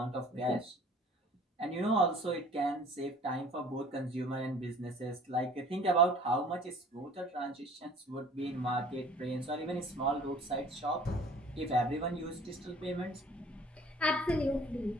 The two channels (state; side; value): normal; both; correlation 0.50